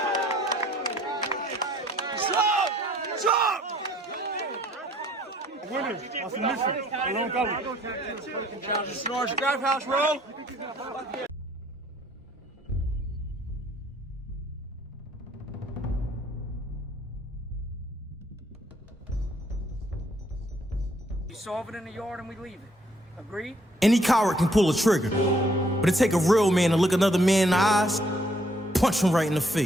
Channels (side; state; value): both; normal; correlation 0.64